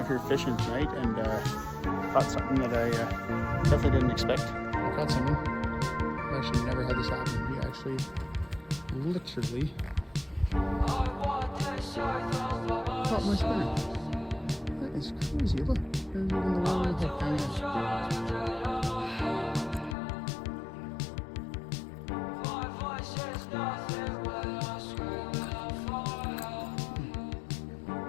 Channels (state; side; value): drops out; right; at 20.0 s